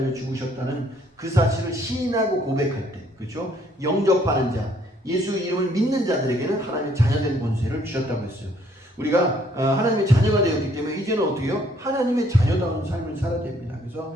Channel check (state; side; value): normal; both; correlation 0.64